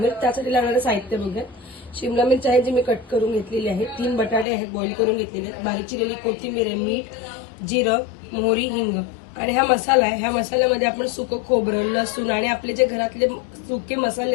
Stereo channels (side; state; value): right; drops out; at 4.5 s